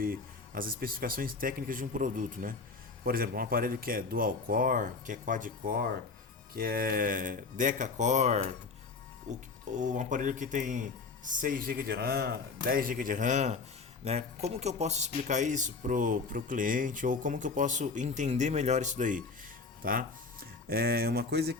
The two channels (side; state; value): right; quieter; 4.5 dB